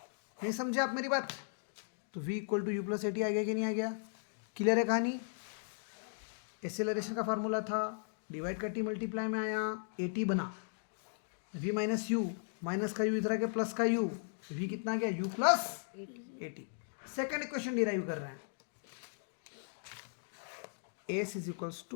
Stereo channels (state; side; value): silent; right; digital silence